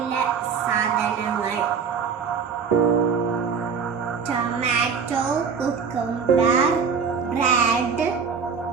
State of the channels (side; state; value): left; quieter; 6.1 dB